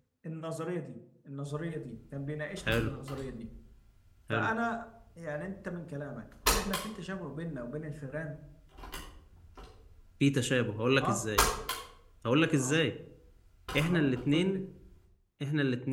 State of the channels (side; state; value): both; identical; correlation 1.00